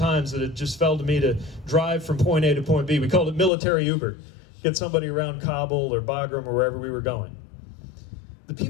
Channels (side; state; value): right; drops out; at 3.5 s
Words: that it just fell to me to drive from point A to point B. We called it military Uber. Get somebody around Kabul or Bagram or wherever we were going. The